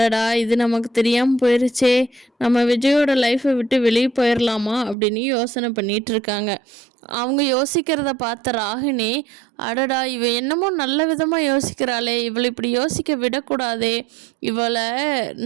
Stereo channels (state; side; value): drops out; left; at 5.0 s